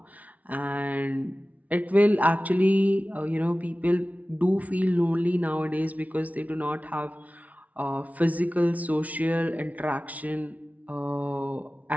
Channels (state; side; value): late; left; 0.070 ms